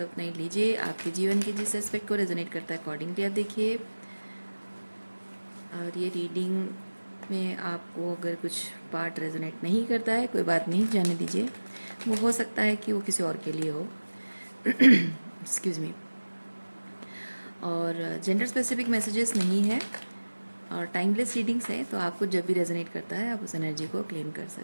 है उतना ही लीजिए। आपके जीवन के जिस एस्पेक्ट को रेजोनेट करता है अकॉर्डिंगली आप देखिए। और ये रीडिंग में आपको अगर कुछ पार्ट रेजोनेट नहीं करता है, कोई बात नहीं, जाने दीजिए। वो हो सकता है कि वो किसी और के लिए हो। Excuse me. और जेंडर स्पेसिफिक मैसेजेस नहीं है और टाइमलेस रीडिंग्स हैं, तो आपको जब भी रेजोनेट करता है आप उस एनर्जी को क्लेम कर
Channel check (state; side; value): inverted; both; correlation -1.00